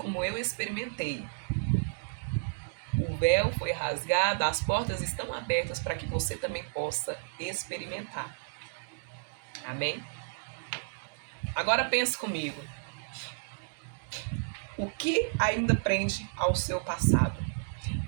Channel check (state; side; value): silent; left; digital silence